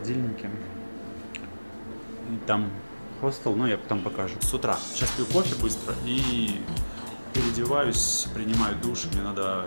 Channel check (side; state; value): both; inverted; correlation -1.00